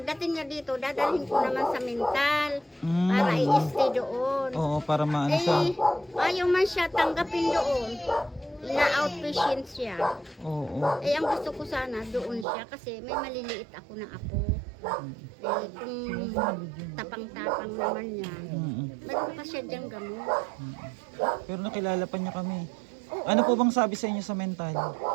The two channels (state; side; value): drops out; left; at 12.5 s